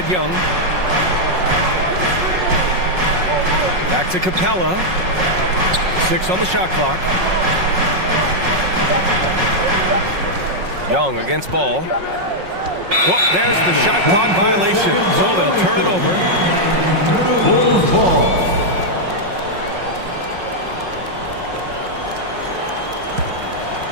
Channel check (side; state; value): left; late; 5.5 ms